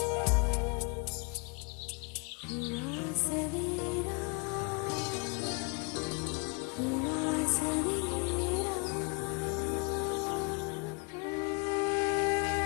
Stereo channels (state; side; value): quieter; right; 32.5 dB